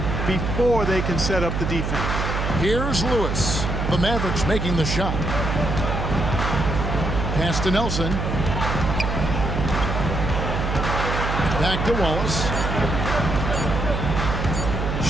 before they can set up the defense. Here's Lewis. The Mavericks making the shot. Pass to Nelson. Back to Wallace.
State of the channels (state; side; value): noise; right; hum, 2 dB below the sound